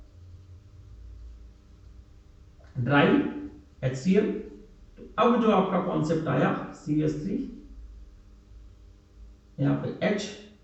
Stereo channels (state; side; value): identical; both; correlation 1.00